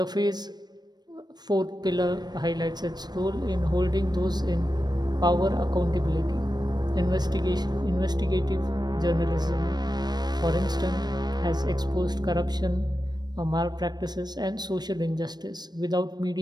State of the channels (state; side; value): late; left; 0.20 ms